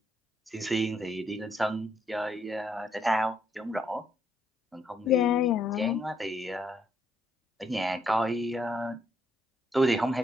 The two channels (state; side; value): normal; both; correlation 0.73